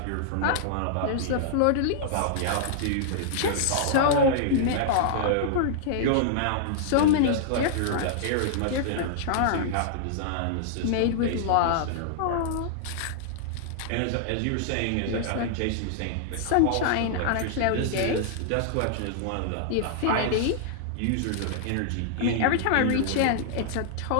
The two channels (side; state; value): both; different; correlation -0.01